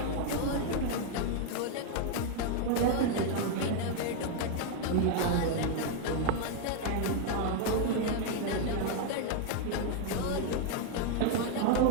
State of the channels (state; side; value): different; both; correlation 0.00